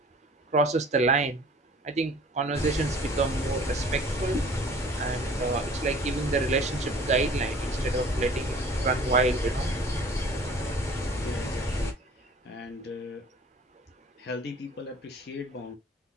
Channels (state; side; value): normal; both; correlation 0.49